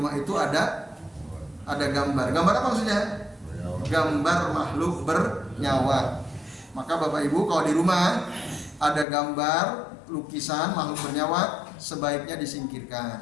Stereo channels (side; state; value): right; drops out; at 9.1 s